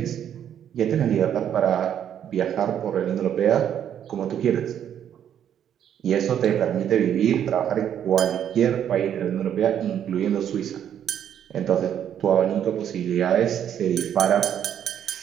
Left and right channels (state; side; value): quieter; left; 9.6 dB